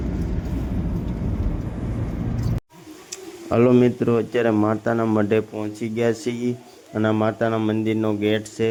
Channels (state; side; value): identical; both; correlation 1.00